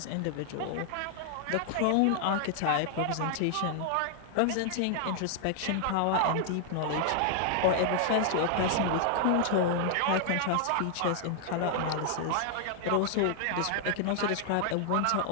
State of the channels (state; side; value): different; both; correlation 0.00